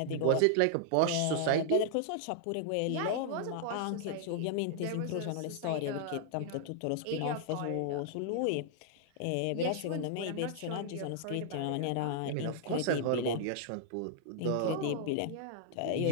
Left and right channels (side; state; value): both; different; correlation -0.01